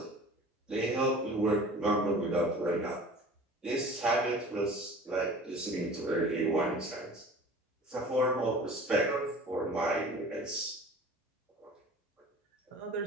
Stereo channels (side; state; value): both; normal; correlation 0.43